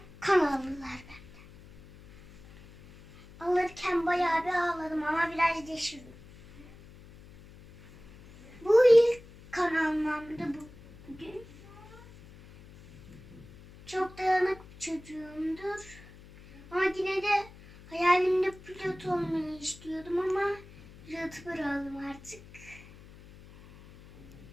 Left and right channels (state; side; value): noise; left; hum, 21 dB below the sound